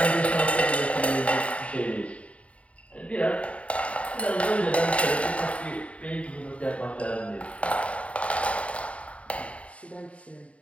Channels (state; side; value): late; right; 0.064 ms